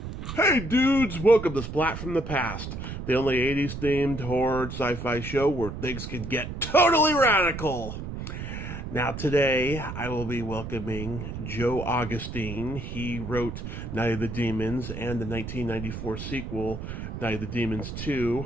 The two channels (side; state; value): right; noise; rumble, 7 dB below the sound